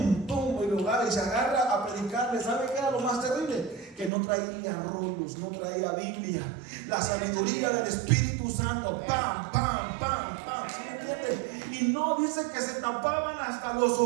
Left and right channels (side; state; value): left; drops out; at 4.1 s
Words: ¡Pum! Y se agarra a predicarle. ¿Sabe qué era lo más terrible? Que no traía rollos, no traía Biblia. La sabiduría del Espíritu Santo. ¡Pam! ¡Pam! ¡Pam! ¡Pam! ¿Sí me entiende? Y no dice que se tapaban hasta los